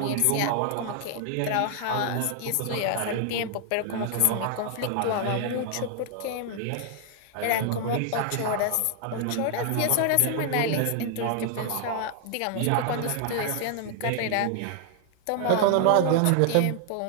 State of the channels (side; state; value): both; different; correlation 0.00